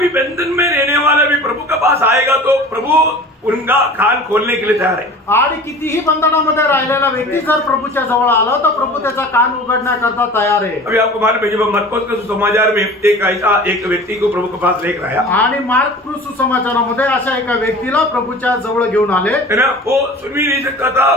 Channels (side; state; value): both; normal; correlation 0.41